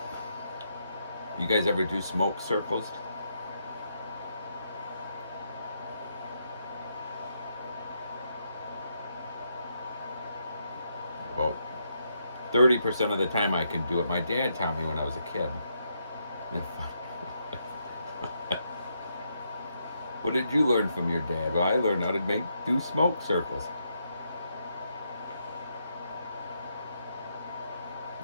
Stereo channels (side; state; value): both; inverted; correlation -0.79